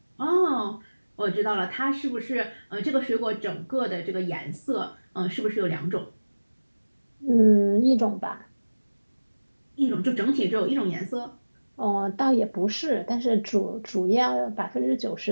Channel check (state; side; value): inverted; both; correlation -1.00